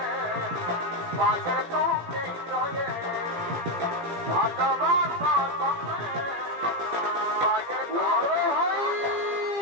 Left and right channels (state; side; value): late; left; 17 ms